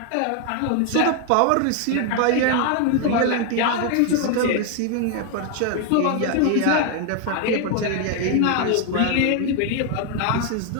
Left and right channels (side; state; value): both; different; correlation 0.01